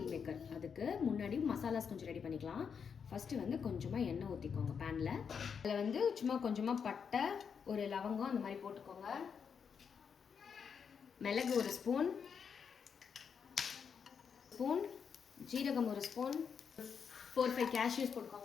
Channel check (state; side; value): quieter; right; 6.6 dB